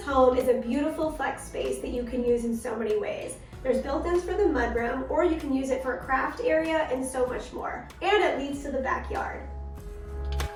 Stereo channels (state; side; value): identical; both; correlation 1.00